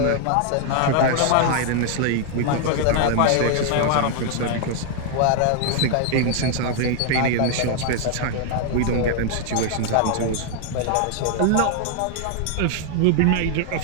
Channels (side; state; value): both; different; correlation 0.00